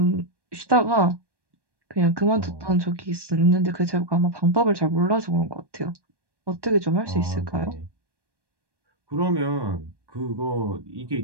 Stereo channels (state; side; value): late; left; 1.1 ms